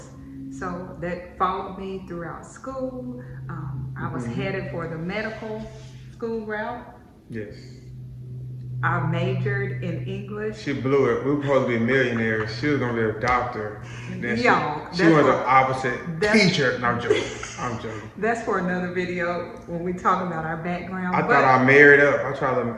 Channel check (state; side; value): identical; both; correlation 1.00